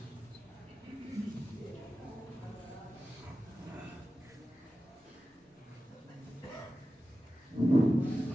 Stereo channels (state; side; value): normal; both; correlation 0.94